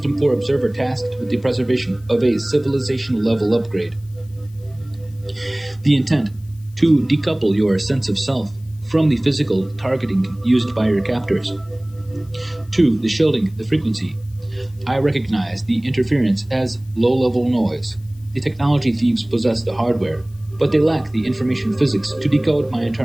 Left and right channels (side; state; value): left; noise; hiss, 30 dB below the sound